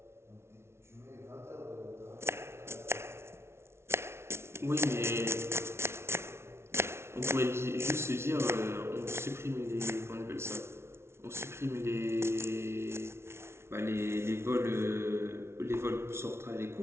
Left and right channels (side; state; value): left; late; 0.12 ms